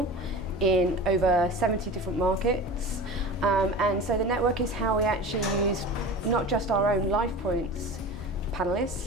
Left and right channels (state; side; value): normal; both; correlation 0.34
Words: in over 70 different markets. And so the network is how we actually use not just our own LifePoints